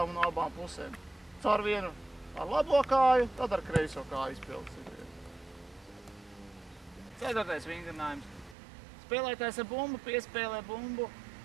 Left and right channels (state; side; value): drops out; left; at 8.6 s